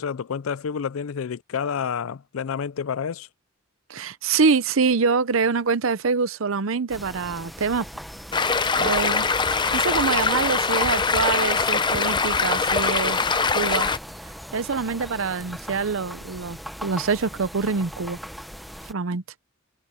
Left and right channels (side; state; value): both; normal; correlation -0.14